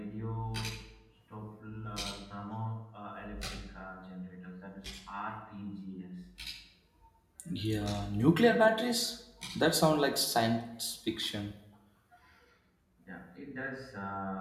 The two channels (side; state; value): both; identical; correlation 1.00